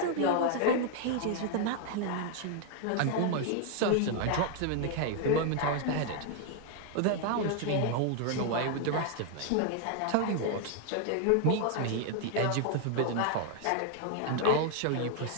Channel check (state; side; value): different; both; correlation 0.00